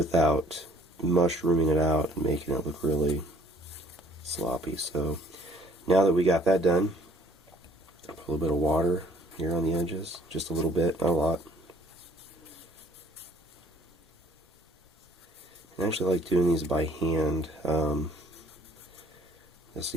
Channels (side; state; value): both; normal; correlation 0.58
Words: mushrooming it out and making it look really sloppy. So now that we got that done, I'll put a little bit of water here on the edges, just a little bit, not a lot. I actually like doing these by hand. You'll